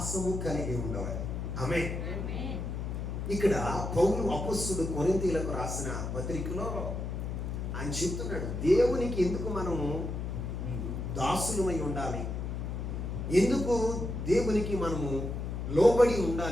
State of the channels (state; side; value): noise; left; hum, 4 dB below the sound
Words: కలిగి ఉండవాలి. ఆమేన్. ఇక్కడ పౌలు అపొస్తలుడు కొరింథీయులకు రాసిన పత్రికలో ఆయన చెప్తున్నాడు, దేవునికి ఎందుకు మనము దాసులమై ఉండాలి, ఎందుకు దేవునికి మనము లోబడి